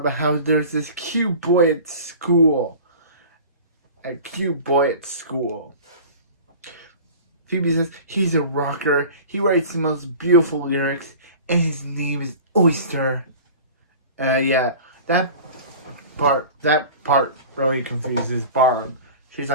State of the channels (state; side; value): inverted; both; correlation -0.39